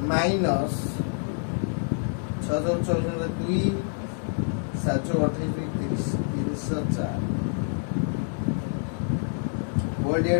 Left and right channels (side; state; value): right; silent; 60 dB below the other